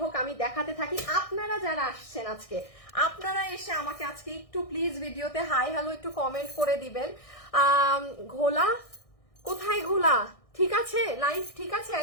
হোক আমি দেখাতে থাকি। আপনারা যারা আসছেন আজকে, আপনারা এসে আমাকে আজকে একটু প্লিজ ভিডিওতে হাই হ্যালো একটু কমেন্ট করে দিবেন। ঘোলা কোথায়? ঘোলা ঠিক আছে, লাইভ ঠিক আছে।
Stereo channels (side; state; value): right; late; 1.6 ms